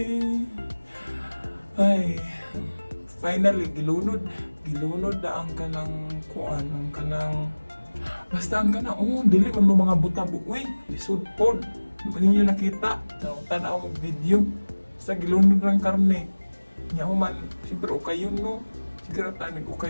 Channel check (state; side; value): inverted; both; correlation -1.00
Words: ay finally gilunod na ang kanang kuan ang kanang basta ang kana, dili man mo mga butabo. Uy, lisod pod. Di ba ninyo nakita? Tanaw mo video. Basta gilunod ng karne. Nya man, siyempre ukayon no. Siguro tanig